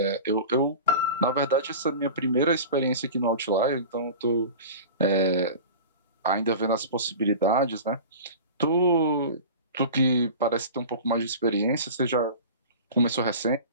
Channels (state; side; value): inverted; both; correlation -0.35